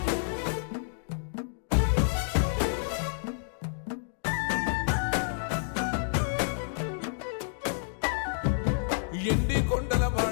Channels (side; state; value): right; silent; digital silence